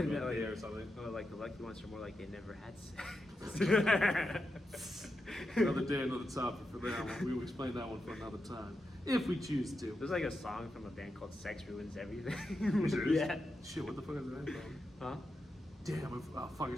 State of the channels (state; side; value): normal; both; correlation 0.87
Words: No, going there or something. well, like the lucky ones are more like they never had sex. Another day, another topic for that one. We will explain that one for another time, if we choose to. There's like a song from a band called "Sex Ruins Everything." Serious? Yeah. Shit, what the fuck is that from? Huh? Damn, fuck, I